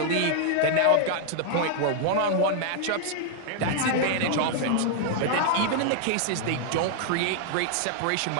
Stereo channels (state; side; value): different; both; correlation 0.00